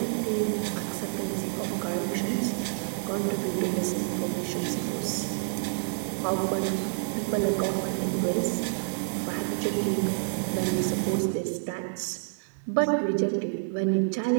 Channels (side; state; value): left; silent; digital silence